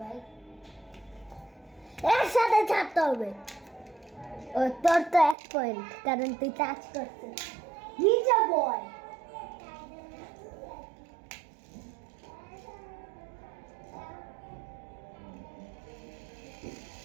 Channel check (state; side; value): drops out; left; at 5.4 s